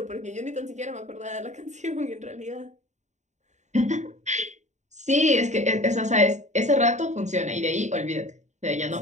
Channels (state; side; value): late; left; 0.34 ms